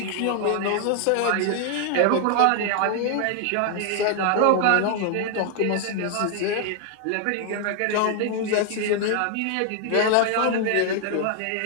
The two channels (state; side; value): different; both; correlation 0.00